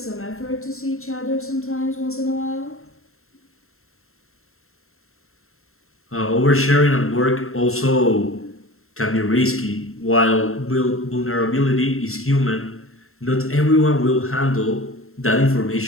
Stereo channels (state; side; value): late; right; 0.62 ms